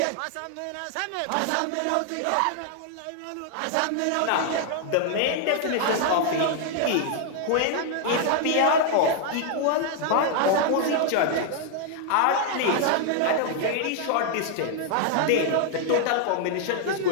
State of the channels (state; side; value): different; both; correlation 0.00